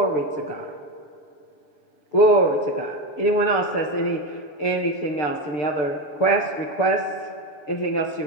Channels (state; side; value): late; right; 6.7 ms